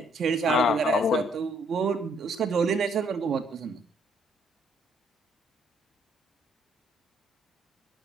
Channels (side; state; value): both; normal; correlation 0.67